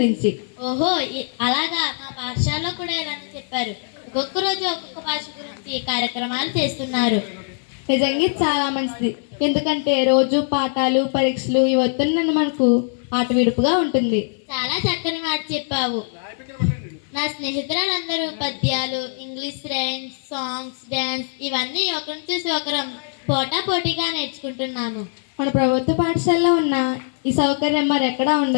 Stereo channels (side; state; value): right; silent; 64 dB below the other